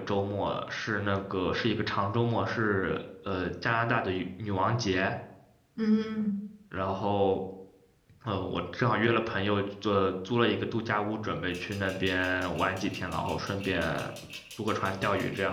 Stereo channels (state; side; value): identical; both; correlation 1.00